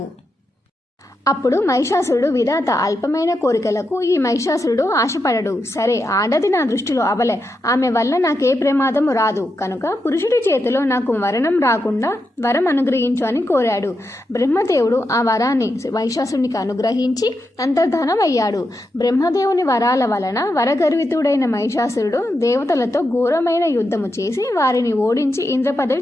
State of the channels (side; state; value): both; normal; correlation 0.86